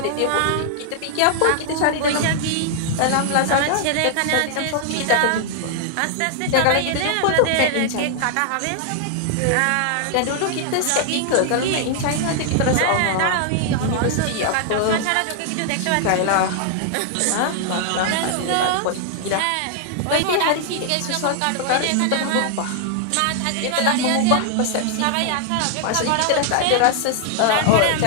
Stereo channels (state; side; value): different; both; correlation 0.00